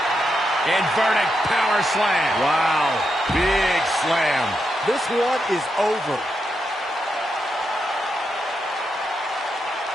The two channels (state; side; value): normal; both; correlation 0.84